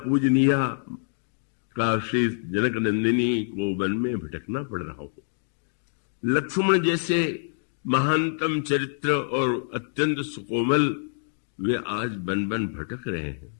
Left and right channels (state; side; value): silent; right; digital silence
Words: पूजनीय काशी जनक नंदिनी को वन में भटकना पड़ रहा हो, लक्ष्मण जैसे महानतम चरित्र और अत्यंत सुकोमल वे आज बन बन भटक रहे हैं,